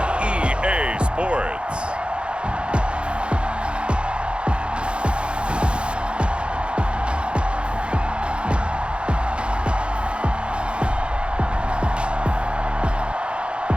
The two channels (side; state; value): left; late; 0.056 ms